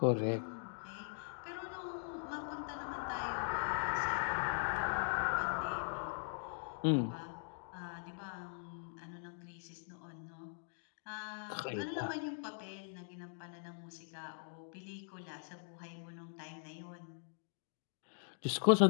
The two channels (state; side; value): silent; right; digital silence